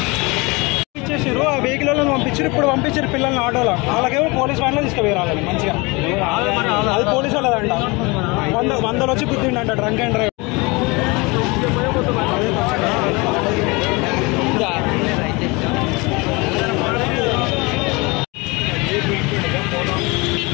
వెహికల్ పంపించారు. ఇప్పుడు పంపించారు పిల్లల్ని ఆటోలో. వాళ్ళకేమో పోలీస్ వ్యాన్లో తీసుకుపోయాలి మంచిగా. అది పోలీసు వాళ్ళదంట. 100 వచ్చి గుద్దిండంట డ్రంక్ అండ్ డ్రైవ్.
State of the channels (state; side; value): quieter; right; 26.0 dB